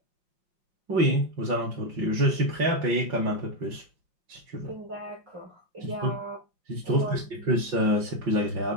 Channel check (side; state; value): left; late; 5.5 ms